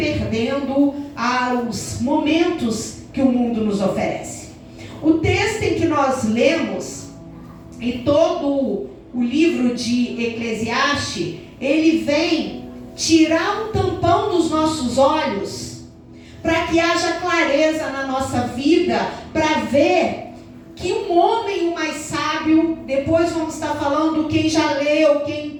aos momentos que o mundo nos oferece. O texto em que nós lemos e todo o livro de Eclesiastes, ele vem tirar um tampão dos nossos olhos para que haja clareza na nossa vida, para ver que um homem o mais sábio, depois vamos estar falando quem já leu, quem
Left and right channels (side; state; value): both; identical; correlation 1.00